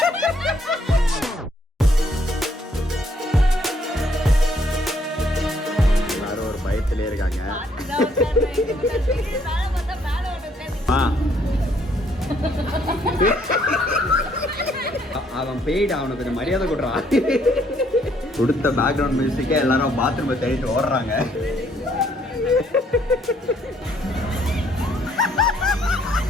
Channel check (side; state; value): both; normal; correlation 0.67